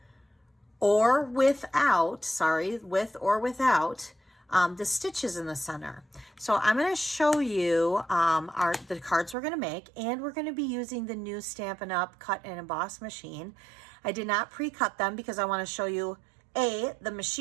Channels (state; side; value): drops out; left; at 9.3 s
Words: or without the stitches in the center. So I'm going to show you the cards we're going to make, and we're going to be using the new Stampin' Up! Cut and Emboss machine. I did not pre-cut them because I want to show you A, the